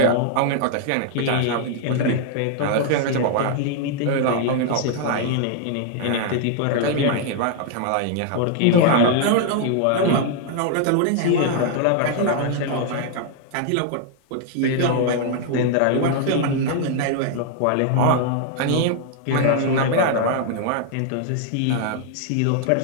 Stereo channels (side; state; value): both; different; correlation 0.00